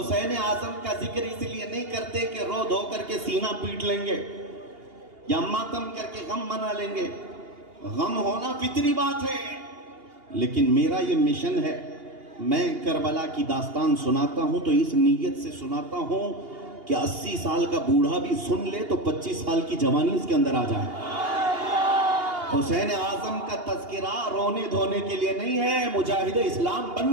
आजम का जिक्र इसलिए नहीं करते कि रो धो करके सीना पीट लेंगे या मातम करके गम मना लेंगे। गम होना फितरी बात है, लेकिन मेरा ये मिशन है, मैं करबला की दास्तान सुनाता हूं तो इस नीयत से सुनाता हूं कि 80 साल का बूढ़ा भी सुन ले तो 25 साल की जवानी इसके अंदर आ जाए। हुसैन आजम का तज़किरा रोने धोने के लिए नहीं है, मुजाहिद इस्लाम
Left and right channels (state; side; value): late; left; 2.8 ms